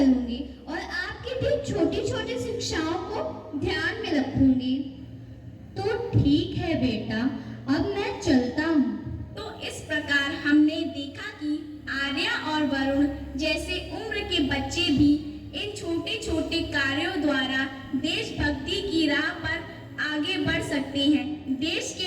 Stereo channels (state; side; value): identical; both; correlation 1.00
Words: और आपकी भी छोटी छोटी शिक्षाओं को ध्यान में रखूंगी। तो ठीक है बेटा, अब मैं चलता हूँ। तो इस प्रकार हमने देखा कि आर्या और वरुण जैसे उम्र के बच्चे भी इन छोटे छोटे कार्यों द्वारा देशभक्ति की राह पर आगे बढ़ सकते हैं। देश